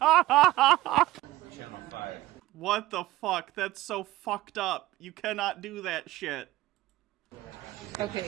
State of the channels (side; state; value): left; quieter; 16.9 dB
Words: What the fuck? That's so fucked up. You cannot do that shit. Okay.